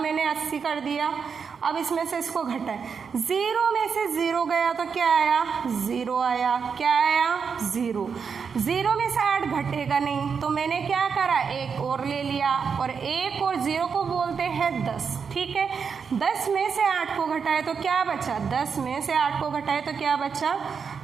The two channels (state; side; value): quieter; left; 6.1 dB